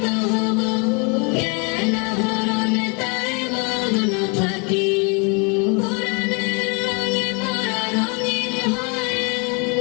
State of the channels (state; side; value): quieter; right; 33.3 dB